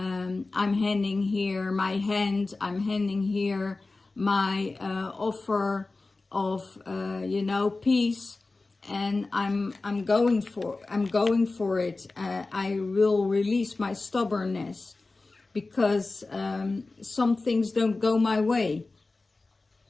handing here my hand, I'm handing here my offer of, you know, peace. And I'm going for it. I will release my stubbornness because some things don't go my way.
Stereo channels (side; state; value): right; quieter; 3.4 dB